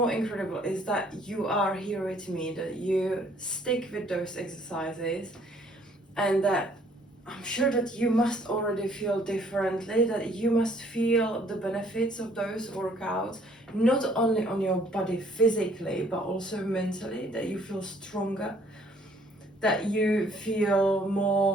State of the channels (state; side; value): normal; both; correlation 0.61